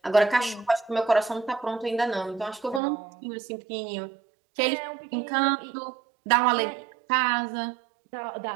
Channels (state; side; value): drops out; left; at 2.8 s